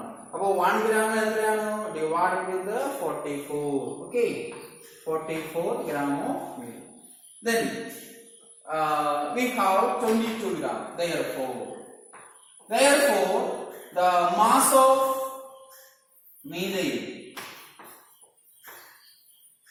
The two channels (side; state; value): both; identical; correlation 1.00